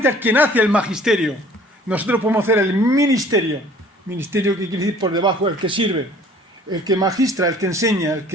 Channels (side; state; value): both; normal; correlation 0.53